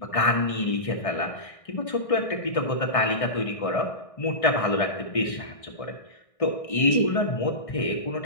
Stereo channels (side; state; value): right; late; 1.6 ms